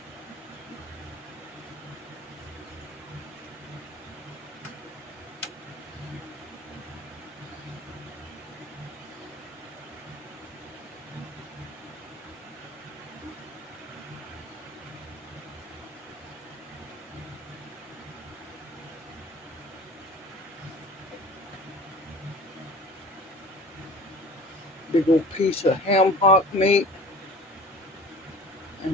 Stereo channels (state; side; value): normal; both; correlation 0.43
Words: Big old piece of ham hock meat